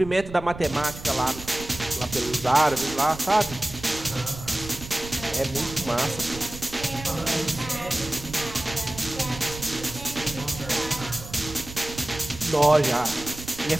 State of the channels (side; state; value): right; noise; rumble, 13 dB below the sound